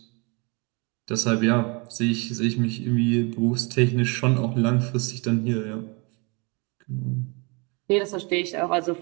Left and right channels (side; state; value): left; quieter; 30.7 dB